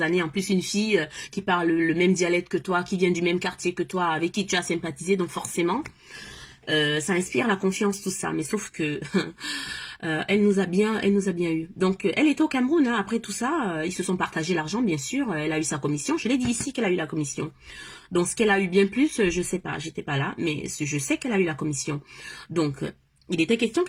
années, en plus une fille qui parle le même dialecte que toi, qui vient du même quartier que toi, avec qui tu as sympathisé, donc forcément ça inspire la confiance, tout ça. Mais sauf que elle nous a bien eu. Donc elle était au Cameroun, après tout ça, ils se sont partagés l'argent, bien sûr. Elle a eu sa commission. Je l'ai dit ici qu'elle a eu la commission. Donc ce qu'elle a eu bien plus, je sais pas, j'étais pas là, mais je sais qu'elle a eu la commission. Donc il était question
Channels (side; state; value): both; identical; correlation 1.00